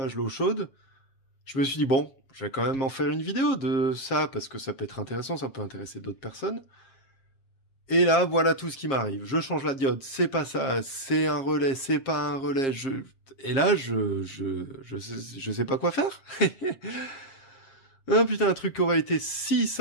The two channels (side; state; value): right; late; 7.4 ms